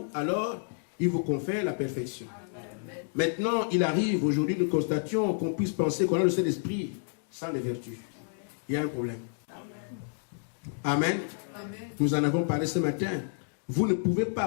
alors il vous confère la perfection. Maintenant, il arrive, aujourd'hui, nous constations qu'on puisse penser qu'on a le Saint-Esprit sans les vertus. Il y a un problème. Amen. Nous en avons parlé ce matin. Vous ne pouvez pas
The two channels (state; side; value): silent; right; digital silence